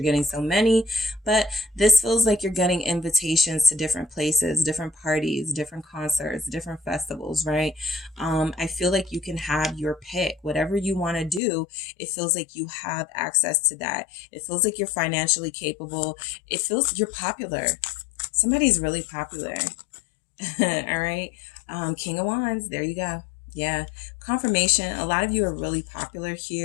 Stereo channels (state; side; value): drops out; right; at 11.4 s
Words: getting so many. But this feels like you're getting invitations to different places, different parties, different concerts, different festivals, right? I feel like you can have your pick. Whatever you want to do, it feels like you have access to that. It feels like you're financially capable. It feels you're popular. Somebody's really popular. All right. King of Wands. There you go. Yeah. Confirmation. A lot of you are really popular